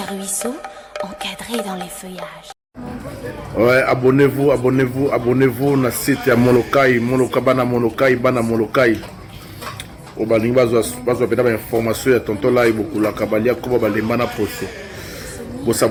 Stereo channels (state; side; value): identical; both; correlation 1.00